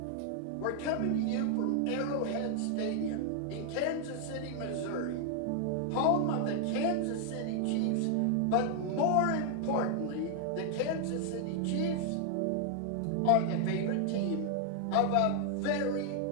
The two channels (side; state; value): both; different; correlation 0.00